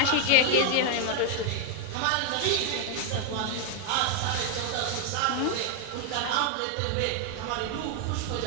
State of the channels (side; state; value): both; different; correlation 0.00